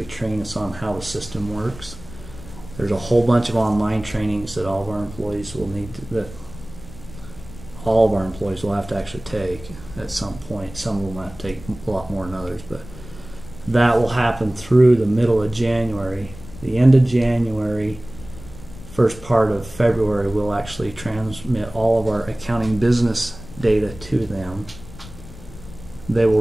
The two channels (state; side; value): noise; left; rumble, 16 dB below the sound